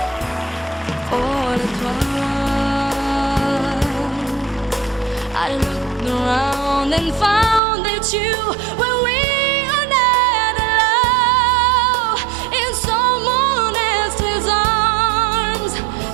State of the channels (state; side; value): drops out; left; at 7.6 s